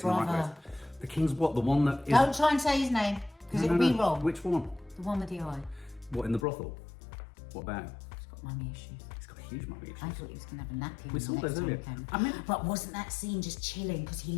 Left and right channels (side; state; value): right; drops out; at 6.5 s